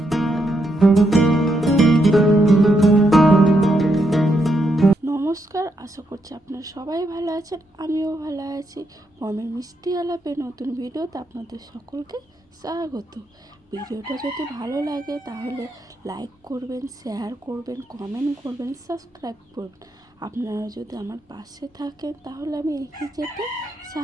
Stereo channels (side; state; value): both; normal; correlation 0.79